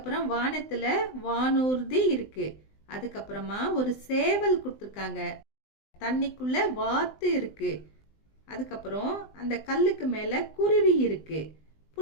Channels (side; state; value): right; late; 20 ms